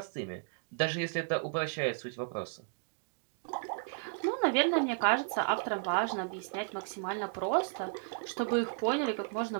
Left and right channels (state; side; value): silent; left; digital silence